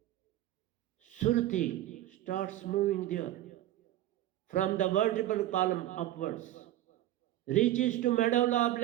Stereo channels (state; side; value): quieter; left; 14.0 dB